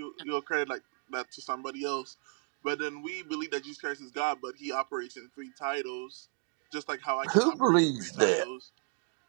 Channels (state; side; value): quieter; left; 39.9 dB